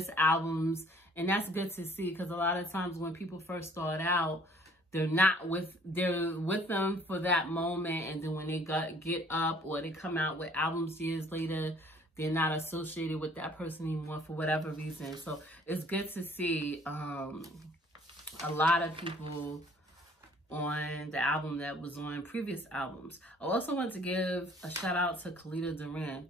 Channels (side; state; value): both; normal; correlation 0.57